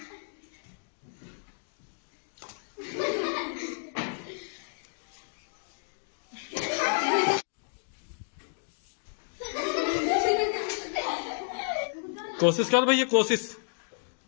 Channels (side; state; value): right; silent; digital silence